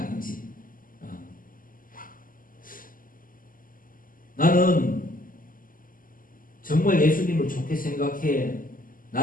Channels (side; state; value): right; late; 0.41 ms